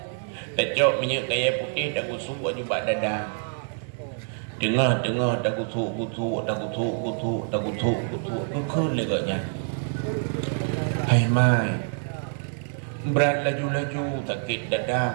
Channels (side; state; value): left; silent; 61 dB below the other